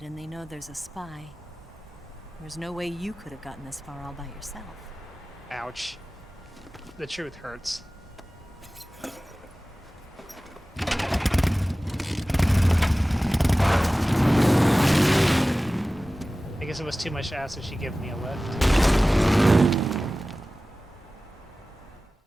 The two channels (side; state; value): both; normal; correlation 0.97